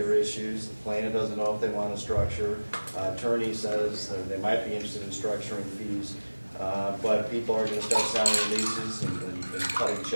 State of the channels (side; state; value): both; inverted; correlation -1.00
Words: issues. The plaintiff doesn't know if they want to structure. Attorney says that they might be interested in structuring fees, but people are going to start signing releases and cutting